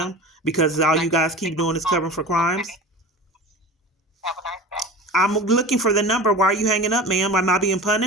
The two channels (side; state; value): both; normal; correlation 0.34